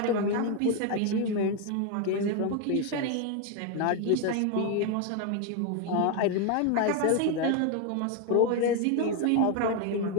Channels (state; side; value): different; both; correlation 0.01